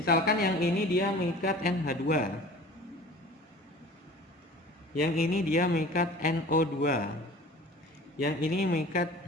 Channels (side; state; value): both; normal; correlation 0.43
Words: yang ini dia mengikat NH2, yang ini dia mengikat NO2, yang ini mengikat